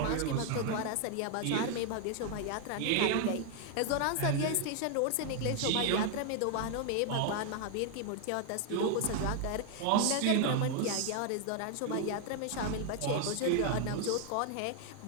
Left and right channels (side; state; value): both; different; correlation 0.00